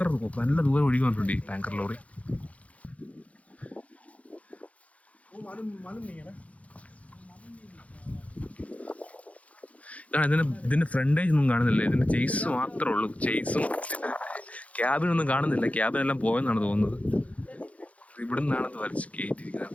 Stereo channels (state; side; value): late; right; 0.066 ms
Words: നല്ല ദൂരം ഒഴുകി വന്നിട്ടുണ്ട് ഈ ടാങ്കർ ലോറി. ഇതിൻ്റെ ഫ്രണ്ടേജ് ഒന്നും കാണുന്നില്ല. ഇതിൻ്റെ ചേസ് മാത്രമേ ഉള്ളൂ. ചേസും ക്യാബിനൊന്നും കാണുന്നില്ല. ക്യാബിനെല്ലാം പോയെന്നാണ് തോന്നുന്നത്. ഇവിടെ നിന്നാണ് ഇത് വലിച്ച്